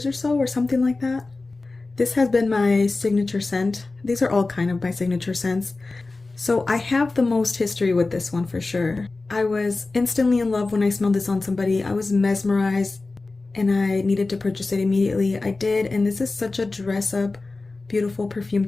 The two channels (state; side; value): quieter; right; 3.5 dB